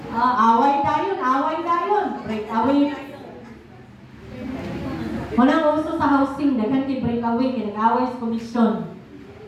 breakaway. Walang uso sa housing, daghan kay breakaway, kay nag-away sa komisyon.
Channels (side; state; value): both; identical; correlation 1.00